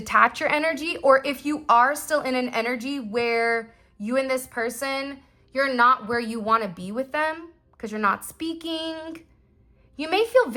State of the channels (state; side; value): identical; both; correlation 1.00